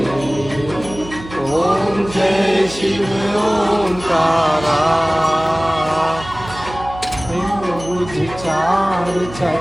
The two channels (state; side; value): noise; right; hum, 14 dB below the sound